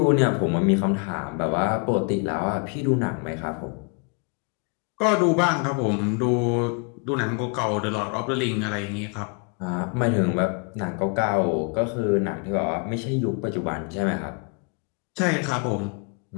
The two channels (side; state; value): right; quieter; 35.1 dB